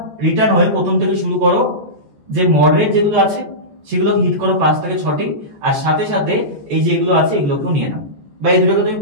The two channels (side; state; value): left; late; 14 ms